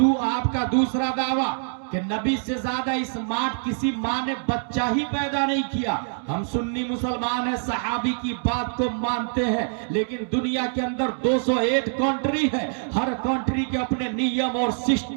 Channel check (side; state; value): left; silent; digital silence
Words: کا دوسرا دعویٰ کہ نبی سے زیادہ اسمارٹ کسی ماں نے بچہ ہی پیدا نہیں کیا. ہم سنی مسلمان ہیں، صحابی کی بات کو مانتے ہیں، لیکن دنیا کے اندر 208 کنٹری ہے، ہر کنٹری کے اپنے نیم اور